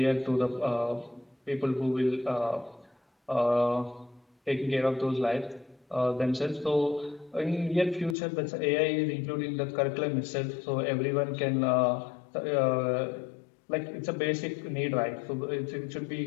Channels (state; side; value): drops out; right; at 8.2 s